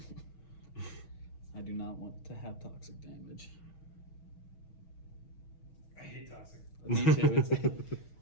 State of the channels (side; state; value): right; late; 6.3 ms